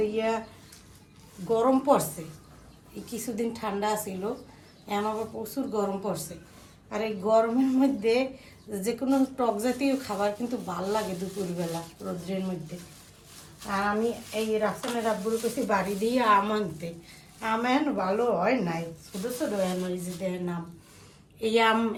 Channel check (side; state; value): both; identical; correlation 1.00